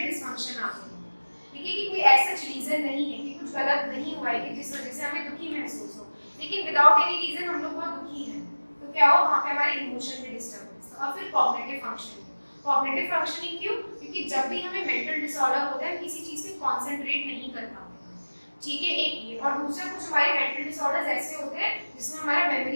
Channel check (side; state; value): both; inverted; correlation -1.00